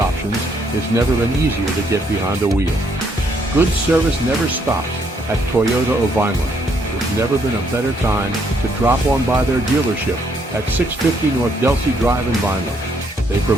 it's never been easier to get behind the wheel. Good service never stops at Toyota of Vineland. There's never been a better time to drop on by their dealership at 650 North Delsey Drive in Vineland. They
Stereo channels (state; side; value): normal; both; correlation 0.71